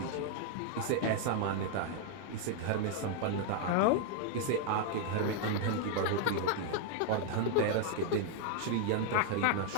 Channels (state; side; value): different; both; correlation 0.00